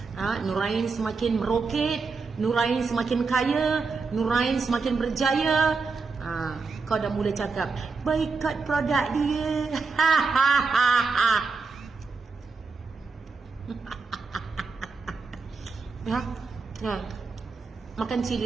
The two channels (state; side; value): quieter; left; 4.5 dB